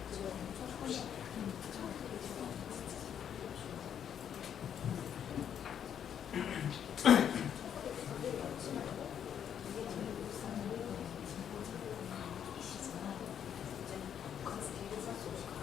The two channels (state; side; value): quieter; right; 8.8 dB